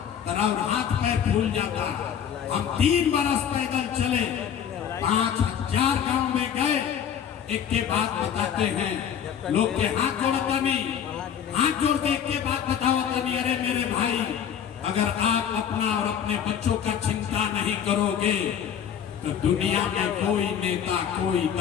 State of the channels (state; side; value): quieter; right; 8.6 dB